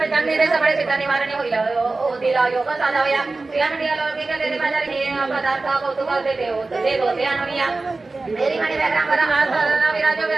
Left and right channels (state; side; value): quieter; left; 3.5 dB